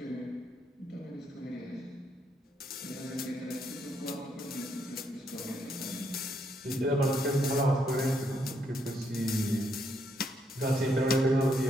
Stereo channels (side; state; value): both; normal; correlation 0.75